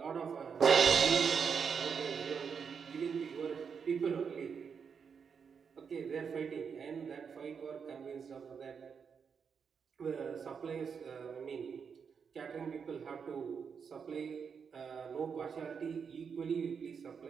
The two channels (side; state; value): left; quieter; 6.4 dB